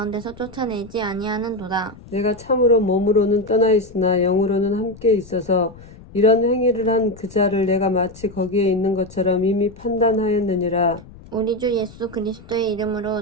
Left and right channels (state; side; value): noise; left; rumble, 20 dB below the sound